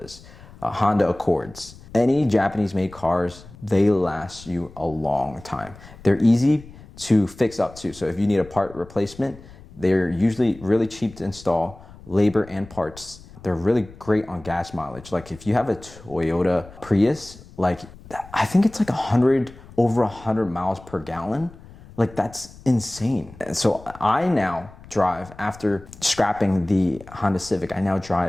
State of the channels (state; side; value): noise; left; rumble, 20 dB below the sound